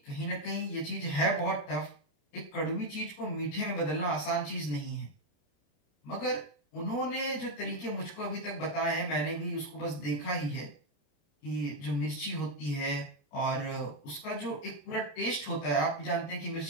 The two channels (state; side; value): late; right; 28 ms